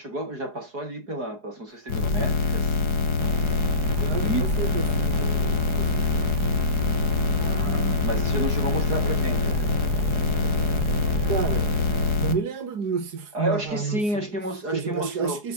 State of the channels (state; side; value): late; left; 4.8 ms